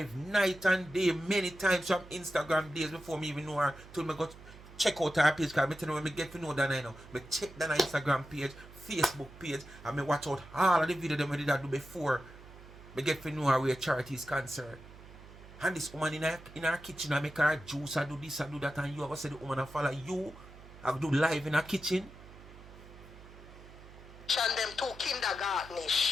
night and day, many times from Instagram days before me even know her, till me go check out her page, because I tell you when me get to know Donna, you know, me check Donna Instagram page, Facebook page, and me watch out all of the videos that I did do before me get to know her where charity is concerned. And this woman in her kitchen, I make her juice, I do this, I do that, and you ever say the woman I follow you, I do live in her kitchen. And them two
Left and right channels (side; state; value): right; noise; hum, 18 dB below the sound